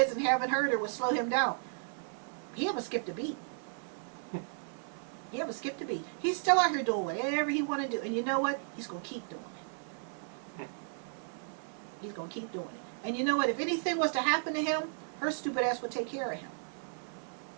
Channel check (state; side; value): silent; left; digital silence